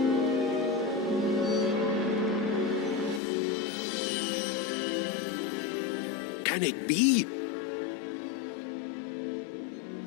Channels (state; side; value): drops out; right; at 3.2 s